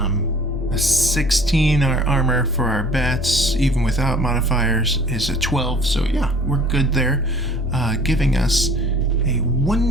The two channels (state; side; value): normal; both; correlation 0.51